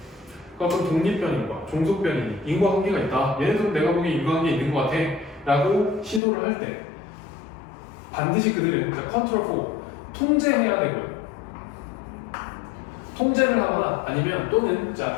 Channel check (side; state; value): right; drops out; at 6.2 s